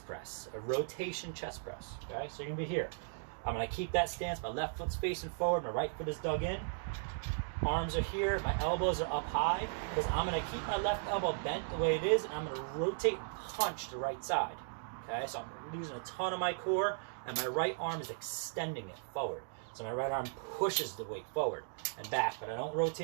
press, a rotation chest press, okay? So you're gonna be here. I'm gonna keep that stance, my left foot's facing forward, my right foot is dug in, arms are here, my elbows are up high, because I'm gonna keep my left elbow bent the way it is, and I'm gonna rotate and punch the right side, okay? So I'm using a ton of my core, and my right arm is extending it forward. So my right arm pushes the weight forward and back, but I don't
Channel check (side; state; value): left; silent; digital silence